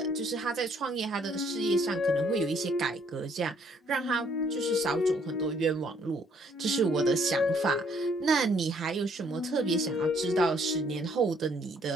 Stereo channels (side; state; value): both; normal; correlation 0.65